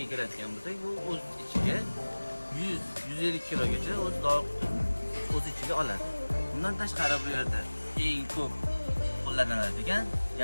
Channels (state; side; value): inverted; both; correlation -1.00